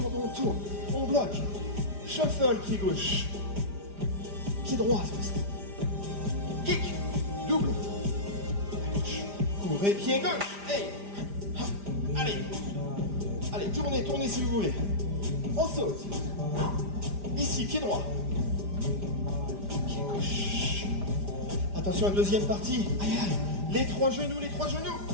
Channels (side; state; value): left; late; 5.0 ms